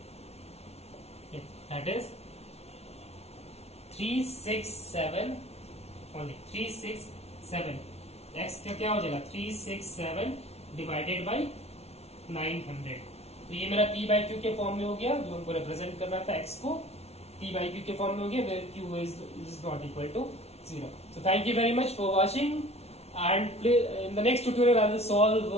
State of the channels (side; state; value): right; late; 0.31 ms